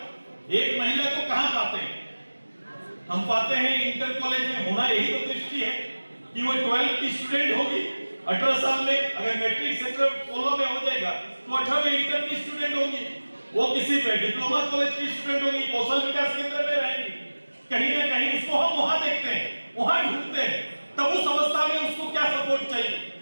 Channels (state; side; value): inverted; both; correlation -1.00